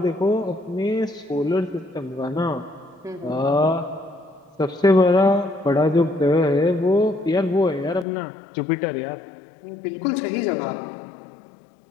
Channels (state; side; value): drops out; right; at 8.1 s